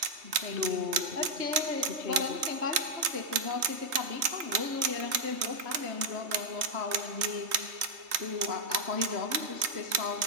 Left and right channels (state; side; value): late; left; 3.2 ms